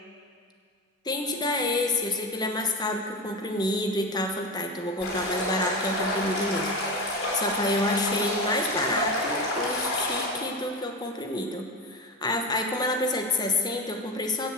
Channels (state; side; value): normal; both; correlation 0.22